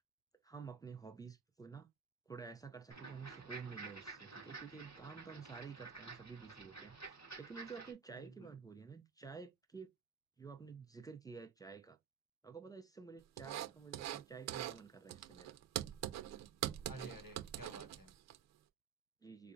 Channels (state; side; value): quieter; left; 7.6 dB